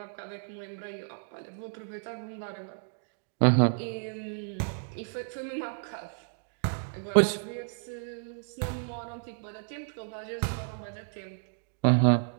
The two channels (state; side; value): silent; left; digital silence